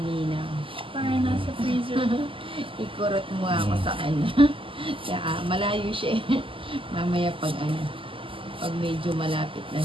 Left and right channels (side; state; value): left; late; 0.25 ms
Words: Parang nasa freezer. Ikurot mo ako sa kanya. Kaya malayo siya eh. Mamaya pag medyo malapit na